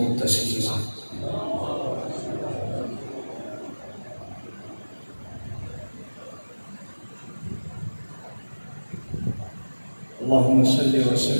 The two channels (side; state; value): both; inverted; correlation -1.00